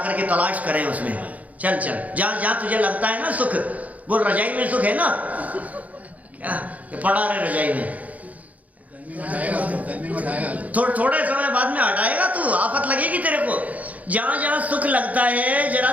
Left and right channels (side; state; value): left; late; 0.073 ms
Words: के तलाश करें उसमें। चल चल जहाँ जहाँ तुझे लगता है ना सुख, वो रजाई में सुख है ना, क्या पड़ा रहे रजाई में, थोड़े समय बाद में हटाएगा तू, आफत लगेगी तेरे को। जहां जहां सुख लगता है जरा